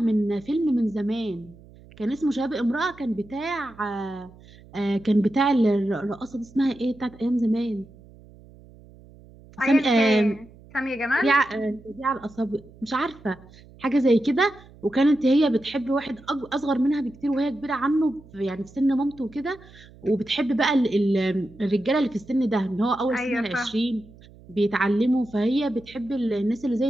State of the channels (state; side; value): noise; right; hum, 23 dB below the sound